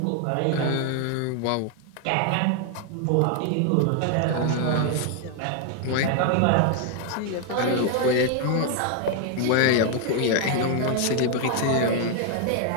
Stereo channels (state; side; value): different; both; correlation 0.01